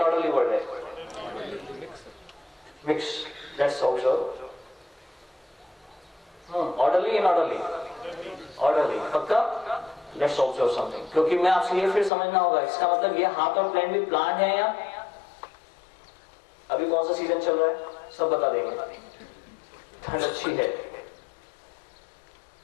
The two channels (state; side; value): drops out; right; at 12.1 s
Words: वर्ल्ड है? Mix, that's also orderly inorderly, orderly पक्का। लेट्स ऑब्जर्व समथिंग, क्योंकि मैं आपसे ये फिर समझना होगा, इसका मतलब ये हाथ और प्लान भी प्लान है या अभी कौन सा सीजन चल रहा है सब बता देंगे। ठंड अच्छी है,